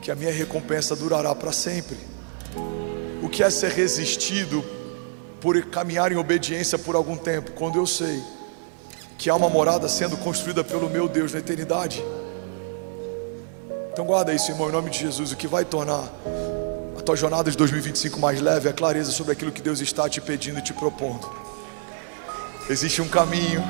que a minha recompensa durará para sempre. O que é ser resistido por caminhar em obediência por algum tempo, quando eu sei que há uma morada sendo construída pelo meu Deus na eternidade. Então guarda isso, irmão, em nome de Jesus. O que vai tornar a tua jornada de 2025 mais leve é a clareza sobre aquilo que Deus está te pedindo e te propondo. Existe um caminho,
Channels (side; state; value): left; silent; 62 dB below the other